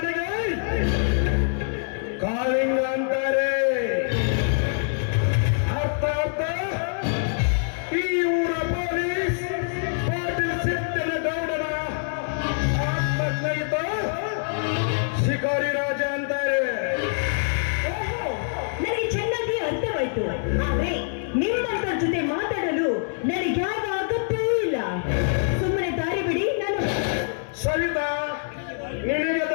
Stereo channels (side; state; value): right; silent; digital silence